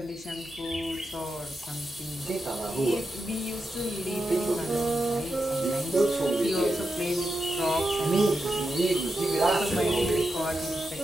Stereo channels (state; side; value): normal; both; correlation 0.88